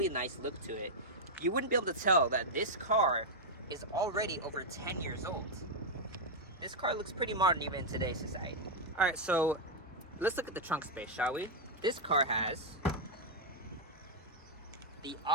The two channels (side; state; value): both; normal; correlation -0.02